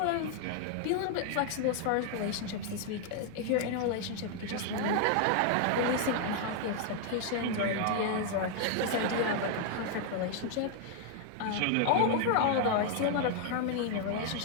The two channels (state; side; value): different; both; correlation 0.00